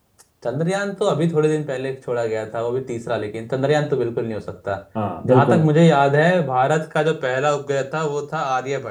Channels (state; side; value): identical; both; correlation 1.00